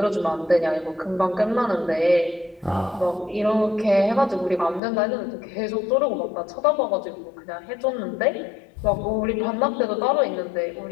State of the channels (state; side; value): drops out; right; at 4.8 s